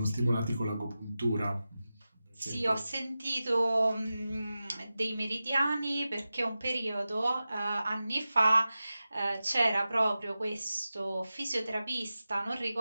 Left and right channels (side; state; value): both; inverted; correlation -0.94